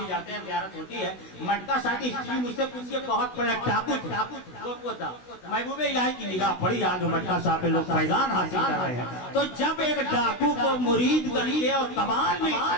جاتے ہیں زیارت ہوتی ہے، مٹکا شاہ کی ہسٹری مجھ سے پوچھیے، بہت بڑا ٹاپو تھا، محبوب الہی کی نگاہ پڑی آج مٹکا شاہ پہ لوگ فیضان حاصل کر رہے ہیں۔ تو جب ایک ڈاکو کو مرید کر کے اور کمال مل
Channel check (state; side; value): late; right; 16 ms